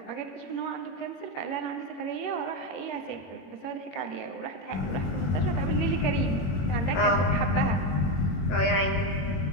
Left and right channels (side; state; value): right; late; 21 ms